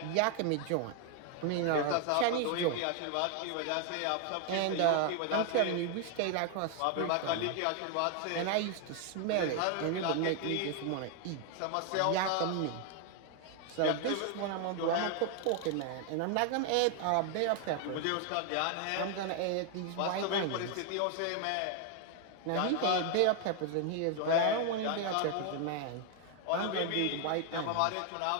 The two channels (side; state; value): both; different; correlation 0.00